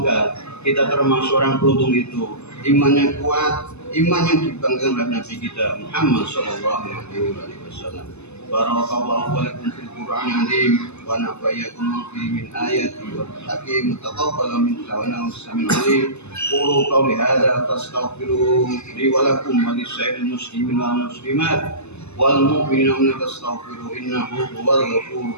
kita termasuk orang beruntung itu, imannya kuat, iman yang dibanggakan oleh Nabi kita Muhammad sallallahu alaihi wasallam. Barakallahu lakum fil Qur'anil azim wa nafa'akum fihi min ayati wal hakim taqabbal minna wa nasta'in alim. Qulu qawli hadza fastaghfiru li wa lakum wa lisa'il muslimin wal muslimat wal mu'minina fastaghfiru innahu huwal ghafurur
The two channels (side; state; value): right; late; 0.80 ms